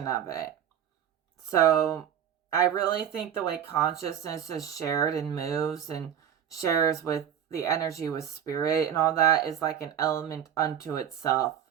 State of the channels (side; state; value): left; quieter; 9.4 dB